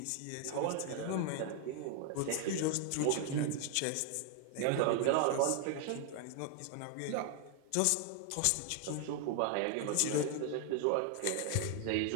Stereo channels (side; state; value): both; different; correlation 0.00